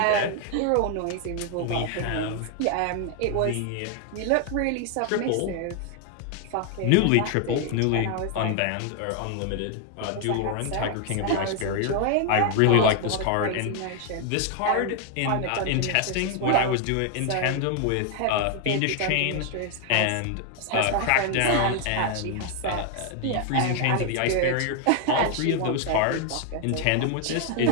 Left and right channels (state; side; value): different; both; correlation 0.00